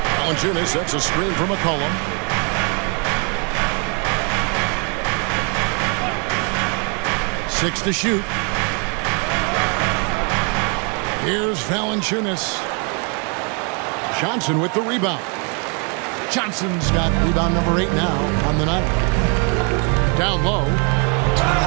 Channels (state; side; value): quieter; left; 35.9 dB